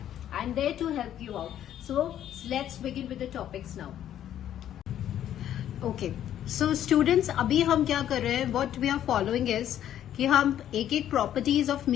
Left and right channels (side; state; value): right; quieter; 11.0 dB